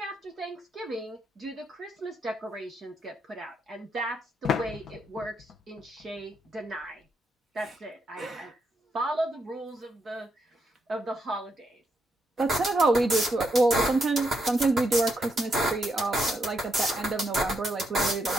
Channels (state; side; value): normal; both; correlation 0.79